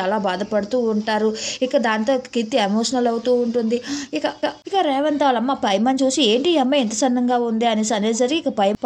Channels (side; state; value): both; identical; correlation 1.00